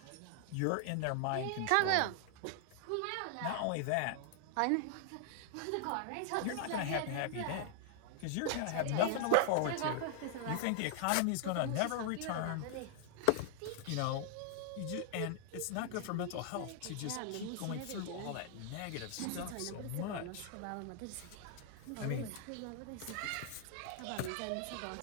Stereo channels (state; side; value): different; both; correlation -0.01